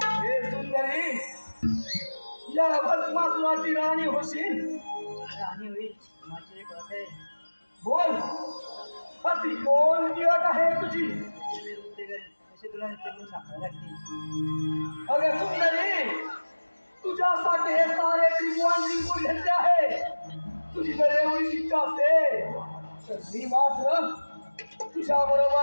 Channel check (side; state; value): both; inverted; correlation -1.00